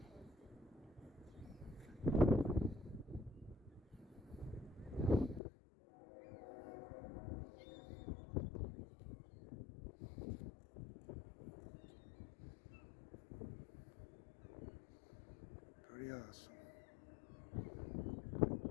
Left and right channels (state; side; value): drops out; right; at 5.4 s